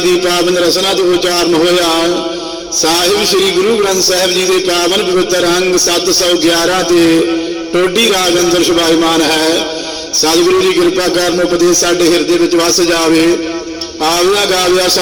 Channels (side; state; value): both; identical; correlation 1.00